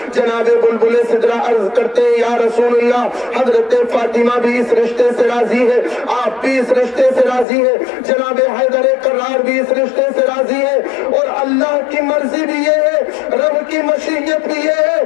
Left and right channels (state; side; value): drops out; right; at 7.5 s